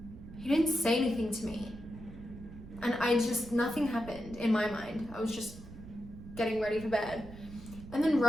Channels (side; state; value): right; noise; rumble, 15 dB below the sound